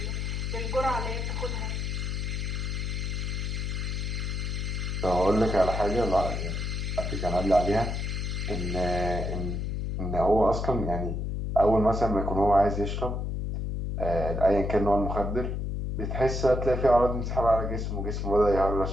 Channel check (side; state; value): left; noise; hum, 2 dB below the sound